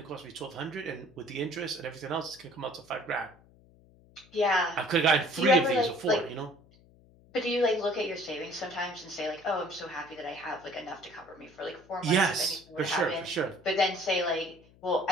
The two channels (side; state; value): left; noise; hum, 27 dB below the sound